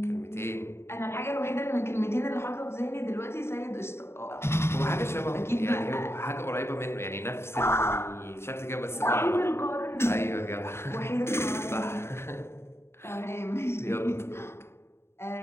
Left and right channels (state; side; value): late; right; 0.12 ms